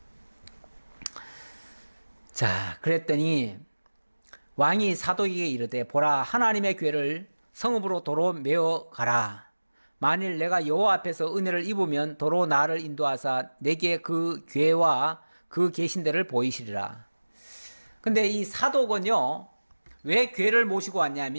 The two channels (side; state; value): both; inverted; correlation -1.00